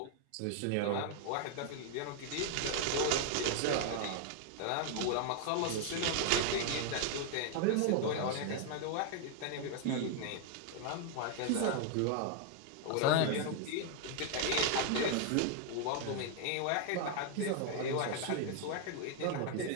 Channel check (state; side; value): different; both; correlation 0.00